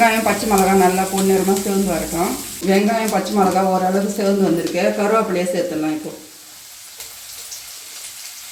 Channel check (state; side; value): identical; both; correlation 1.00